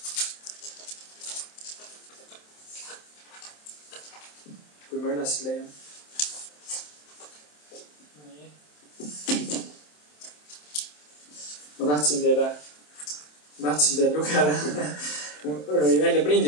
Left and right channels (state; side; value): late; right; 27 ms